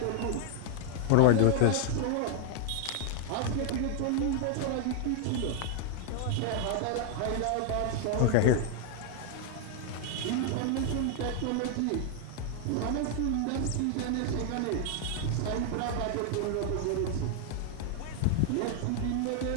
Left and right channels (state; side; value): different; both; correlation 0.00